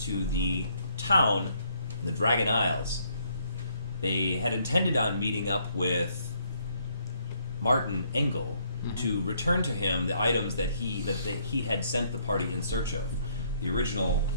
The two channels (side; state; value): both; inverted; correlation -0.69